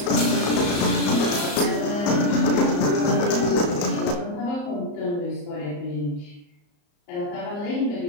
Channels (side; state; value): right; late; 34 ms